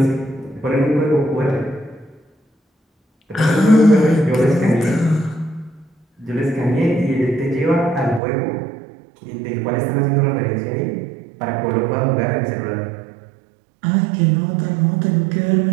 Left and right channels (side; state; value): left; drops out; at 8.2 s